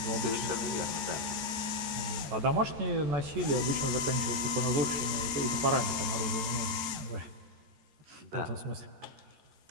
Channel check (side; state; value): left; late; 13 ms